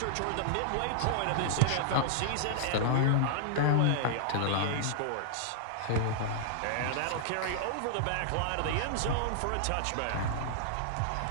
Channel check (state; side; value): different; both; correlation -0.01